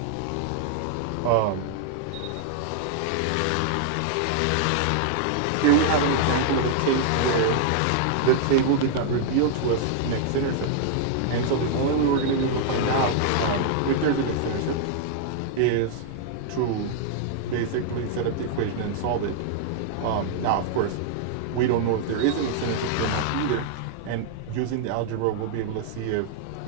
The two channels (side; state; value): both; different; correlation -0.01